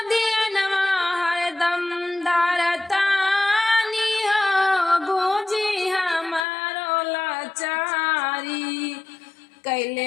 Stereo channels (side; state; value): right; drops out; at 6.5 s